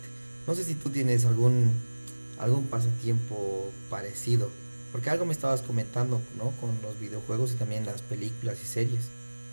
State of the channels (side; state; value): both; inverted; correlation -1.00